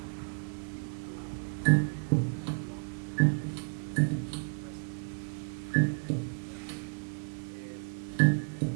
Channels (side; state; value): left; silent; digital silence